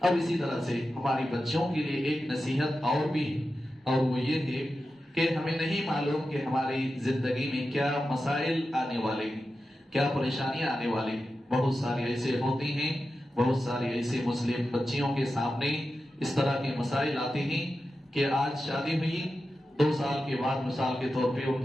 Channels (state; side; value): normal; both; correlation 0.91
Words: अब इसी तरह से हमारी बच्चियों के लिए एक नसीहत और भी है और वो ये है कि हमें नहीं मालूम कि हमारी जिंदगी में क्या मसाइल आने वाले हैं, क्या परेशानियां आने वाली हैं। बहुत सारी ऐसे होती हैं, बहुत सारी ऐसे मुस्लिम बच्चियों के सामने इस तरह के मसाइल आते हैं कि आज शादी हुई 2 साल के बाद मिसाल के तौर पे